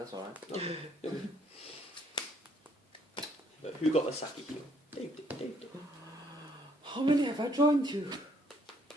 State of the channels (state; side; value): normal; both; correlation 0.66